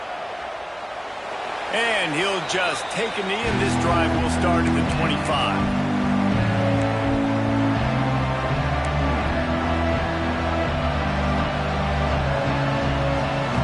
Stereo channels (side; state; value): both; identical; correlation 1.00